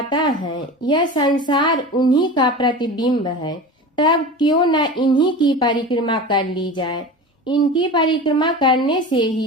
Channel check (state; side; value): normal; both; correlation 0.31